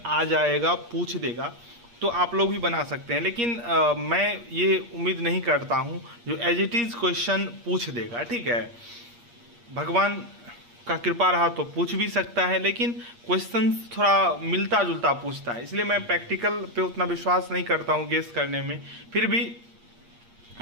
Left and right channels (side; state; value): left; late; 8.5 ms